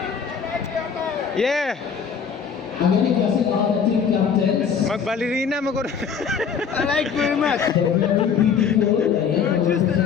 Yeah, magbalerina mo ko. I like very much. You're just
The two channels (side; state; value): right; quieter; 6.7 dB